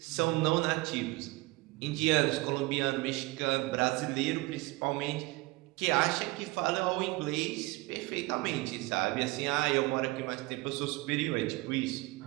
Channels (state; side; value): quieter; left; 22.2 dB